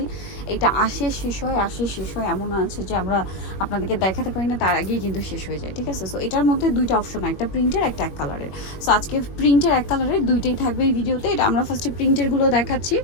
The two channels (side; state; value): right; late; 21 ms